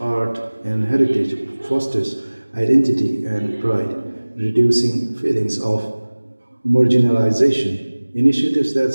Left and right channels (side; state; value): both; inverted; correlation -1.00